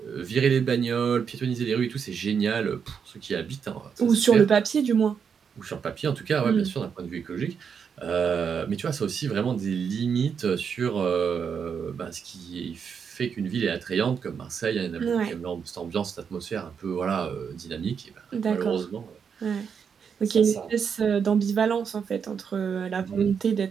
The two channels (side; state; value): left; quieter; 6.7 dB